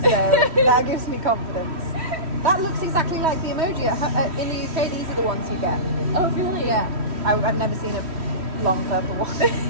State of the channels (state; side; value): late; left; 3.1 ms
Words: So that gives me confidence. That looks exactly like the emoji. In the UK, these are the ones you get. Oh, really? Yeah. I've never seen a long purple